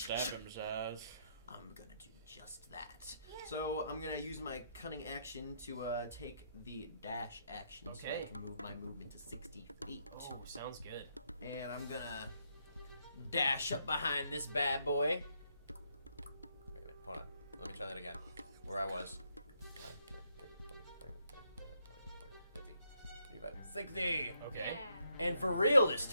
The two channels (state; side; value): inverted; both; correlation -0.75